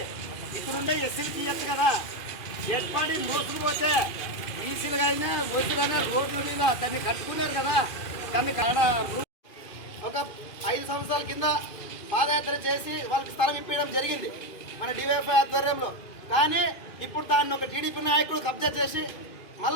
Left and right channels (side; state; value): right; late; 2.4 ms